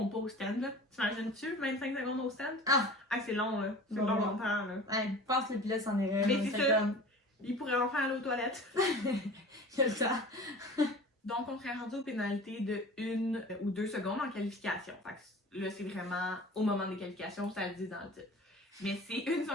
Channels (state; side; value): normal; both; correlation 0.40